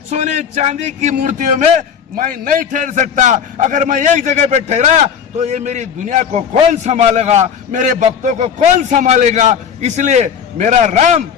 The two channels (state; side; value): quieter; right; 7.5 dB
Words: सोने चांदी की मूर्तियों में मैं नहीं ठहर सकता। अगर मैं एक जगह पे ठहरा तो ये मेरी दुनिया को कौन संभालेगा, मेरे भक्तों को कौन संभालेगा? इसलिए मेरा राम